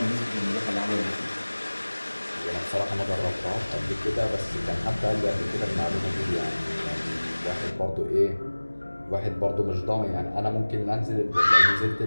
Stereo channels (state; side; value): inverted; both; correlation -1.00